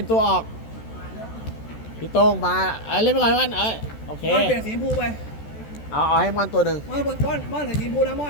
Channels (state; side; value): late; right; 14 ms